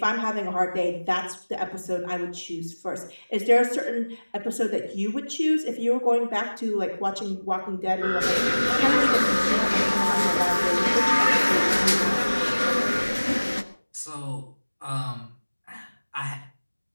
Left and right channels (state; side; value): inverted; both; correlation -1.00